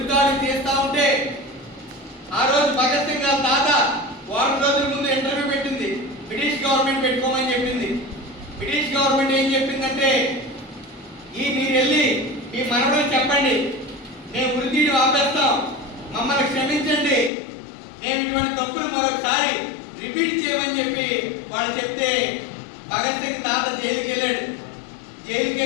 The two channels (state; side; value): drops out; right; at 17.3 s